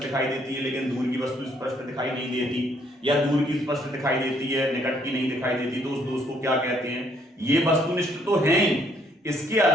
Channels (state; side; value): normal; both; correlation 0.67